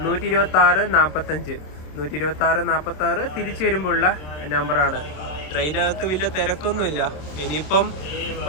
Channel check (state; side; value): late; right; 27 ms